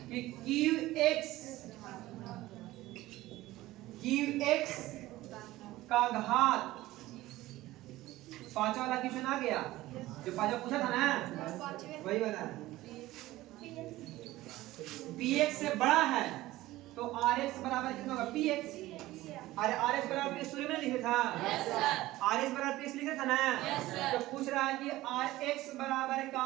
कि qx का घात, पांचवा वाला क्वेश्चन आ गया जो पांचवा पूछा था ना, वही वाला है, px से बड़ा है तो rx बराबर कितना होगा px, अरे rx बराबर px शुरू में लिखा था, rx बराबर px लिखा था ना, तो पूछ रहा है कि rx बराबर क्या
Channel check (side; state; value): left; quieter; 17.1 dB